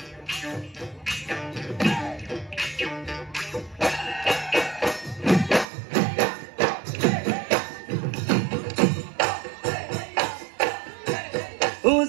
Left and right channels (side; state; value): left; drops out; at 5.7 s